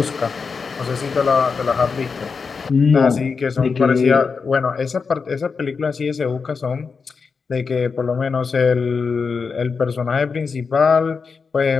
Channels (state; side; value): quieter; right; 5.2 dB